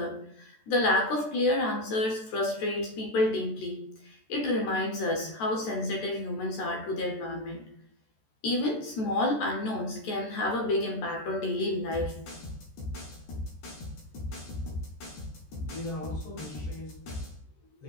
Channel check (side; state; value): right; late; 14 ms